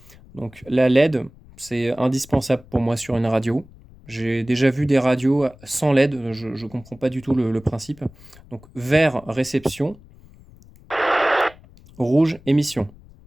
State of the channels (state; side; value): noise; left; rumble, 24 dB below the sound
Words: Donc la LED, c'est indispensable pour moi sur une radio. J'ai déjà vu des radios sans LED, je ne comprends pas du tout le principe. Donc vert, réception, rouge, émission.